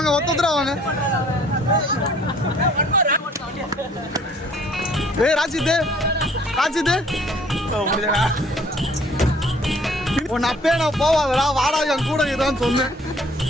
ஒத்தோத்தரா வாங்க. ஏய் ராஜித் உன் அப்பே நான் போவாதடா, வாடா என் கூட இதான்னு சொன்னேன்.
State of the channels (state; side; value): normal; both; correlation 0.57